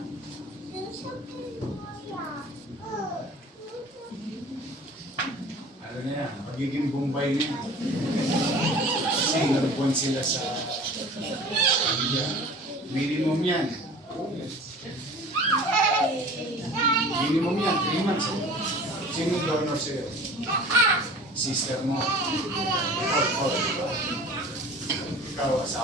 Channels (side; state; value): both; normal; correlation 0.43